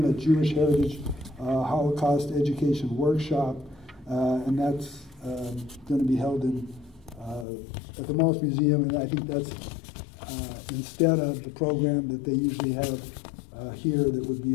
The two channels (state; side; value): drops out; right; at 7.5 s